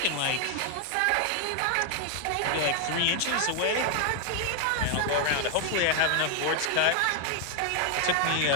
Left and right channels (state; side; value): different; both; correlation 0.00